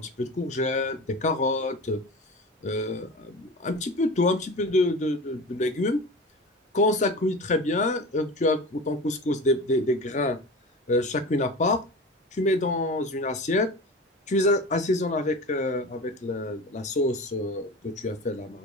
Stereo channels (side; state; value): both; normal; correlation 0.32